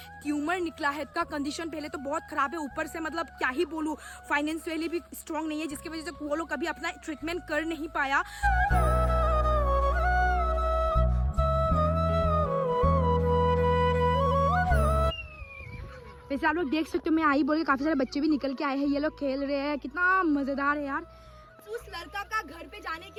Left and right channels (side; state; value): both; identical; correlation 1.00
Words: ट्यूमर निकला है. इसका कंडीशन पहले तो बहुत खराब है, ऊपर से मतलब क्या ही बोलूँ, फाइनेंशियली भी स्ट्रॉन्ग नहीं है, जिसकी वजह से वो लोग कभी अपना ट्रीटमेंट कर नहीं पाया. वैसे आप लोग देख सकते हो, मैं आई बोल के काफी सारे बच्चे भी निकल के आए हैं, ये लोग खेल रहे हैं, कितना मजेदार है यार. उस लड़का का घर पे जाने